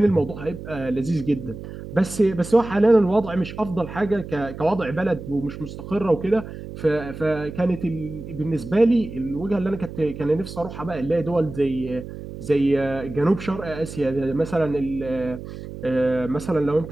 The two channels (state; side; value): noise; right; hum, 11 dB below the sound